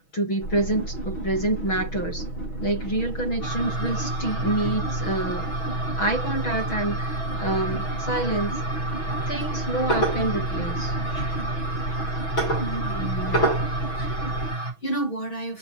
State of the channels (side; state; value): right; late; 6.2 ms